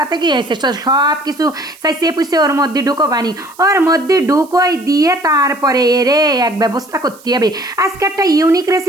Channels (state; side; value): noise; right; hiss, 24 dB below the sound